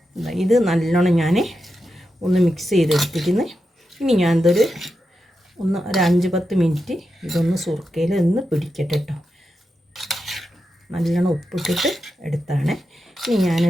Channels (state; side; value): normal; both; correlation 0.88